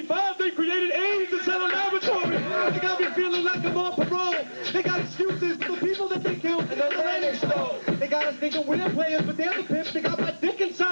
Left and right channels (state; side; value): inverted; both; correlation -1.00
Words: they created AIDS and set a laboratory. They got me feeling like I'm on parole. They got excuses for the people that they killed and the land they stole. They got us thinking we're players, but they're the pimps. They got my dick